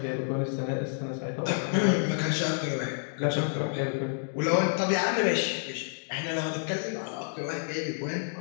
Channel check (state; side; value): silent; right; digital silence